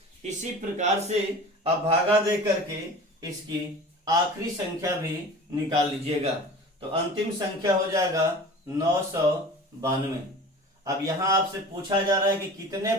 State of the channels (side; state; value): both; normal; correlation 0.38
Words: इसी प्रकार से अब भागा दे करके इसकी आखिरी संख्या भी निकाल लीजिएगा। तो अंतिम संख्या हो जाएगा 992। अब यहां आपसे पूछा जा रहा है कि कितने